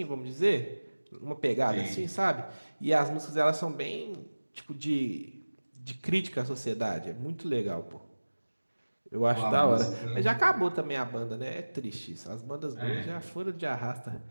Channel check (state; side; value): inverted; both; correlation -1.00